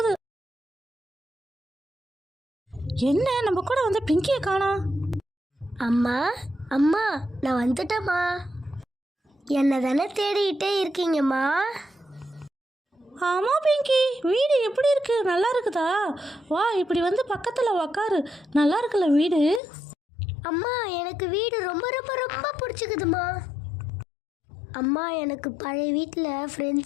என்ன நம்ம கூட வந்து பிங்கியை காணோம்? அம்மா அம்மா, நான் வந்துட்டேம்மா. என்ன தானே தேடிக்கிட்டே இருக்கீங்கம்மா? ஆமாம் பிங்கி, வீடு எப்படி இருக்கு? நல்லா இருக்குதா? வா, இப்படி வந்து பக்கத்தில் உக்காரு. நல்லா இருக்குல்ல வீடு? அம்மா, எனக்கு வீடு ரொம்ப ரொம்ப ரொம்ப பிடிச்சிக்குதுமா. அம்மா, எனக்கு பழைய வீட்டில்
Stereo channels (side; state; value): right; drops out; at 19.6 s